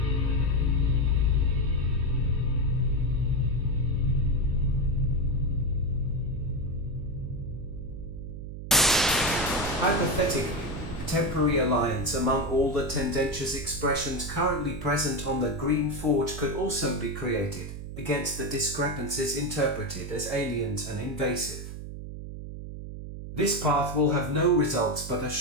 Hypothetically, temporary alliance among all the tendentious expressions currently present on the green forge could also be created against the discrepancies interpreted as aliens and invasive. This path will have no results but a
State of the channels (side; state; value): right; noise; hum, 9 dB below the sound